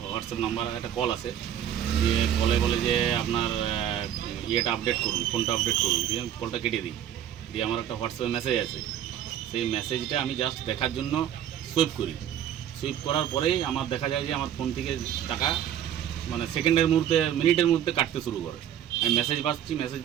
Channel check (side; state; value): left; quieter; 10.3 dB